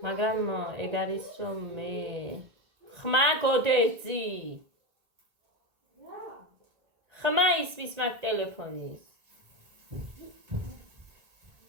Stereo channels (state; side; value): late; left; 1.8 ms